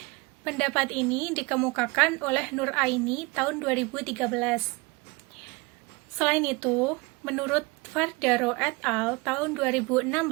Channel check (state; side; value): quieter; left; 26.1 dB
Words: Pendapat ini dikemukakan oleh Nur Aini tahun 2013. Selain itu, menurut Fardaro et al. Tahun 2016,